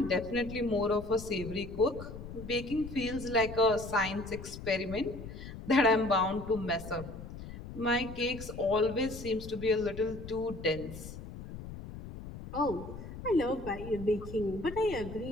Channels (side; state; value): left; noise; rumble, 11 dB below the sound